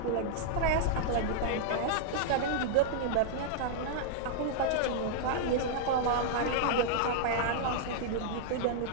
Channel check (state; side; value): different; both; correlation -0.01